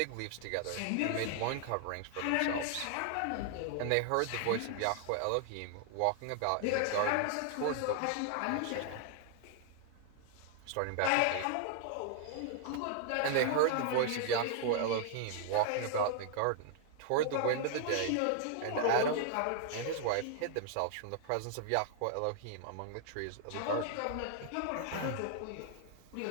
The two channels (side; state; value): both; different; correlation 0.00